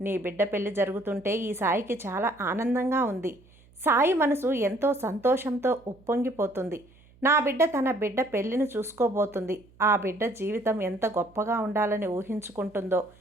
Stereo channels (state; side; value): noise; right; hum, 28 dB below the sound